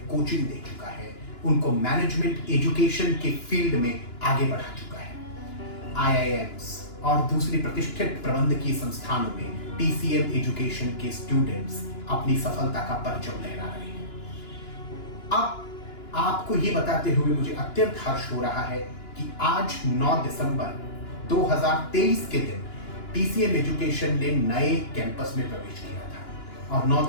कोचिंग दे चुका है, उनको मैनेजमेंट एजुकेशन के फील्ड में आगे बढ़ा चुका है। आईआईएम्स और दूसरी प्रतिष्ठित प्रबंधकीय संस्थानों में टीसीएम एजुकेशन के स्टूडेंट्स अपनी सफलता का परचम लहरा रहे हैं। अब आपको ये बताते हुए मुझे अत्यंत हर्ष हो रहा है कि आज 9 दिसंबर 2023 के दिन टीसीएम एजुकेशन ने नए कैंपस में प्रवेश किया था और 9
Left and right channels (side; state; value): right; late; 2.9 ms